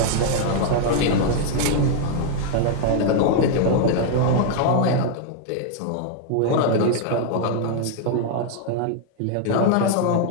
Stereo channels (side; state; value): both; different; correlation 0.00